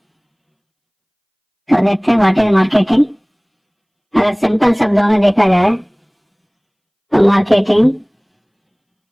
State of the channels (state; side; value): identical; both; correlation 1.00